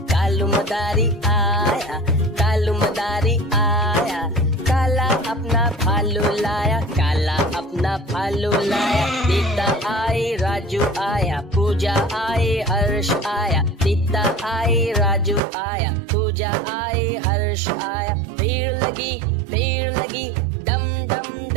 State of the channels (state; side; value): drops out; left; at 15.4 s